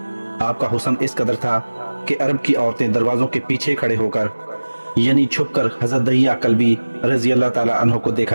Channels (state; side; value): inverted; both; correlation -1.00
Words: आपका हुस्न इस कदर था कि अरब की औरतें दरवाज़ों के पीछे खड़े होकर यानी छुपकर हज़रत दहिया कल्बी रज़ी अल्लाह ताला अन्हो को